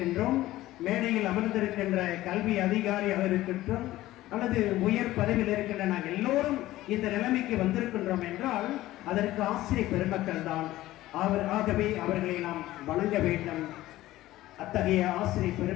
மேடையில் அமர்ந்திருக்கின்ற கல்வி அதிகாரியாக இருக்கின்றோம், அல்லது உயர் பதவியில் இருக்கின்ற நாங்கள் எல்லோரும் இந்த நிலைமைக்கு வந்திருக்கின்றோம் என்றால் அதற்கு ஆசிரியர் பெருமக்கள் தான். ஆகவே அவர்களை நாம் வணங்க வேண்டும். அத்தகைய ஆசிரியர்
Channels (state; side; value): quieter; right; 16.0 dB